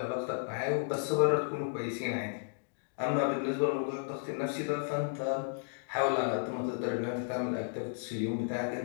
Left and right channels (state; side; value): silent; right; digital silence